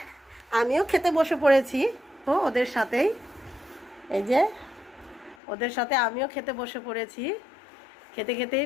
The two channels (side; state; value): right; drops out; at 5.4 s